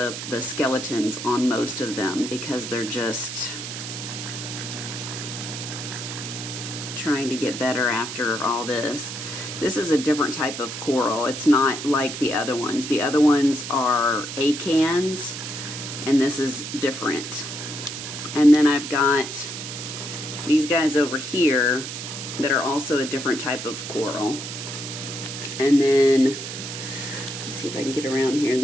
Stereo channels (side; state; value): right; noise; hiss, 8 dB below the sound